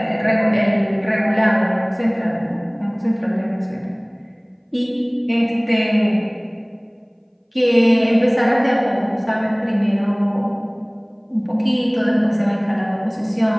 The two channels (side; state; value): both; identical; correlation 1.00